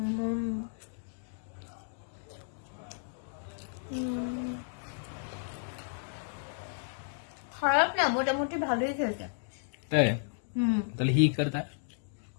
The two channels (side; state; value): right; silent; digital silence